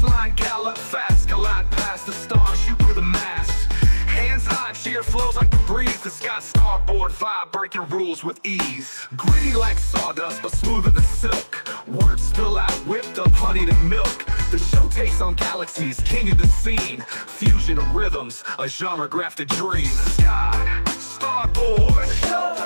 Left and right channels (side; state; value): both; inverted; correlation -1.00